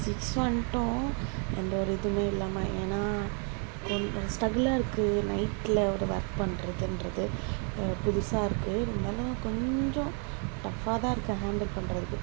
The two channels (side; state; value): left; quieter; 39.8 dB